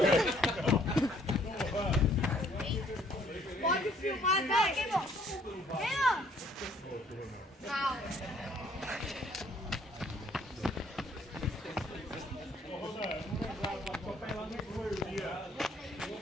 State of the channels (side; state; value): both; normal; correlation 0.62